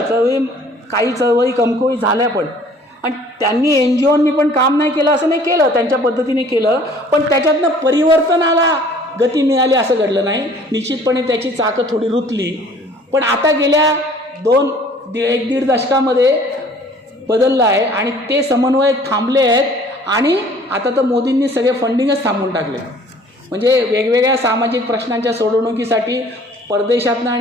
काही चळवळी कमकुवत झाल्या, पण आणि त्यांनी NGOनी पण काम नाही केलं असं नाही, केलं त्यांच्या पद्धतीने केलं, पण त्याच्यातनं परिवर्तनाला गती मिळाली असं घडलं नाही. निश्चितपणे त्याची चाकं थोडी रुतली, पण आता गेल्या 1-1.5 दशकामध्ये बदललं आहे, आणि ते समन्वय थांबले आहेत, आणि आता तर मोदींनी सगळे फंडिंगच थांबवून टाकले. म्हणजे वेगवेगळ्या सामाजिक प्रश्नांच्या सोडवणुकीसाठी परदेशातनं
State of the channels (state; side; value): normal; both; correlation 0.53